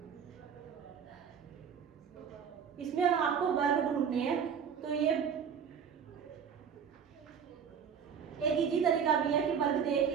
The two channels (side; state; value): left; quieter; 7.3 dB